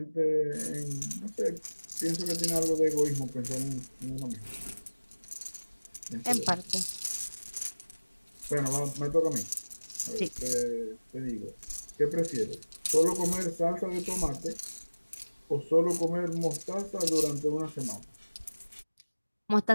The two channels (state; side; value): inverted; both; correlation -1.00